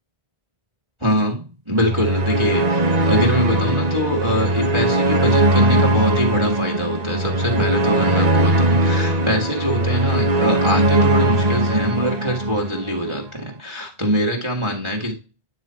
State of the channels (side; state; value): left; late; 1.4 ms